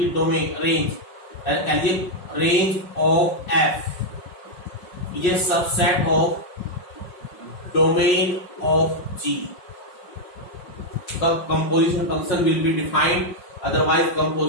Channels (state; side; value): late; right; 5.5 ms